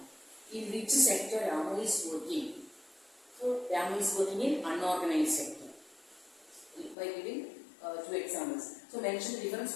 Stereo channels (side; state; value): right; drops out; at 7.0 s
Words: In which sector Ramu is working? So, Ramu is working in unorganized sector. By giving two examples. So, mention the